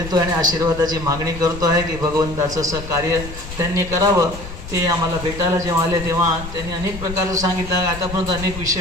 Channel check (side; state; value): left; noise; rumble, 11 dB below the sound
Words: आणि आशीर्वादाची मागणी करतो आहे की भगवंताचं असं कार्य त्यांनी करावं. ते आम्हाला भेटायला जेव्हा आले तेव्हा त्यांनी अनेक प्रकारचं सांगितलं. आतापर्यंत अनेक